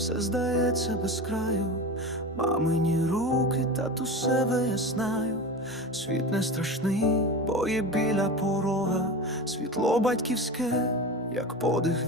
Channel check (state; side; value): normal; both; correlation 0.28